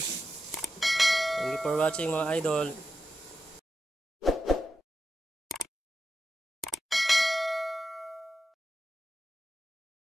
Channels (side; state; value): both; normal; correlation 0.89